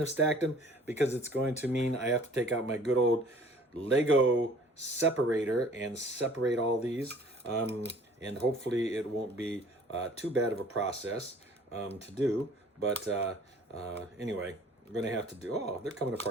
have stacked them because it's going to mean I have to take out my good old Lego separator and separate all these. And hopefully it won't be too bad of a process to do. But anyway, we're going to have to do... Oh, they're coming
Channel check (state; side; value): normal; both; correlation 0.52